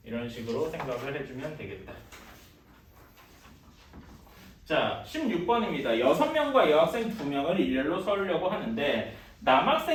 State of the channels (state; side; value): identical; both; correlation 1.00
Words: 이런 식으로 생각을 해주면 되겠다. 자, 16번입니다. 6명과 여학생 2명을 일렬로 서려고 하는데